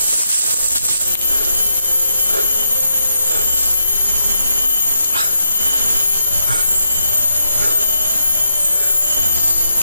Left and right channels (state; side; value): inverted; both; correlation -0.82